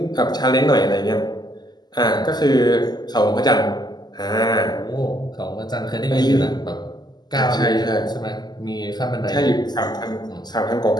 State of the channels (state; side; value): late; right; 0.20 ms